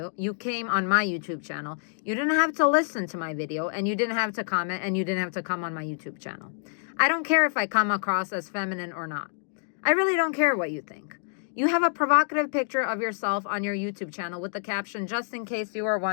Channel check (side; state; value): right; silent; digital silence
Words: You came on my YouTube channel. You didn't have to listen to my video, and you didn't have to comment, and you didn't have to come on my YouTube channel. I don't care if I come across as feminine or not. I really don't care what you think. You have a provocative picture of yourself on your YouTube channel with the caption, "Just in case you are